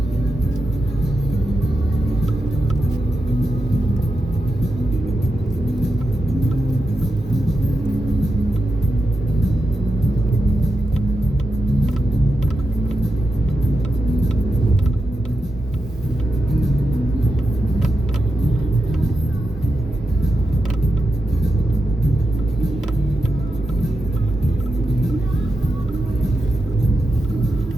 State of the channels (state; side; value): normal; both; correlation 0.88